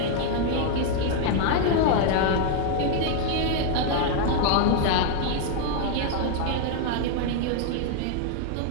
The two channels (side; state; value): both; different; correlation 0.00